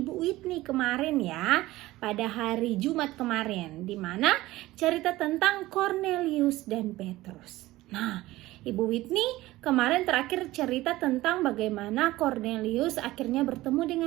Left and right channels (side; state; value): left; quieter; 17.6 dB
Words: Whitney kemarin ya, pada hari Jumat kemarin, di mana cerita tentang Cornelius dan Petrus. Nah, Ibu Whitney kemarin terakhir cerita tentang bagaimana Cornelius akhirnya bertemu